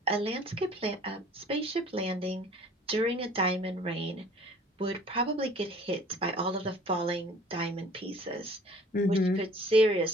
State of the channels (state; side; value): normal; both; correlation 0.51